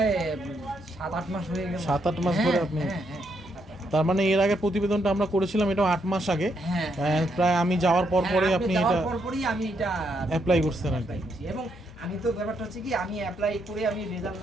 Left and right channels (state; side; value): normal; both; correlation 0.77